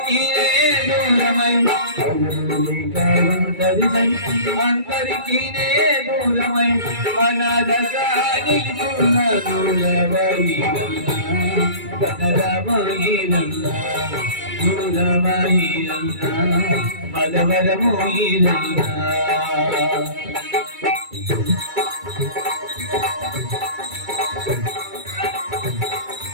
దూరమై అందరికీ దూరమై అనాథగా నిలుచున్న దూరవాయిరన్నా కదలవాయిరన్నా పూలవాయిరన్నా మదవరము ఈరన్నా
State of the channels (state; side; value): late; left; 2.3 ms